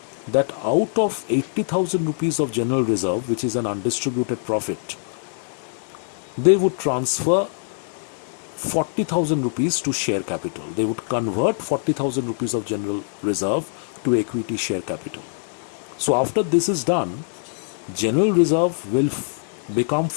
that out of 80,000 rupees of general reserve, which is an undistributed profit, they would transfer 40,000 rupees to share capital. They would convert 40,000 rupees of general reserve to equity share capital. So after this is done, general reserve will become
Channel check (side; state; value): right; silent; 63 dB below the other